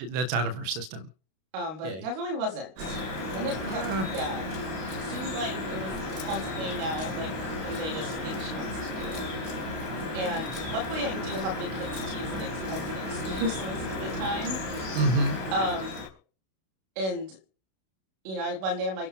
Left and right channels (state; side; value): late; left; 32 ms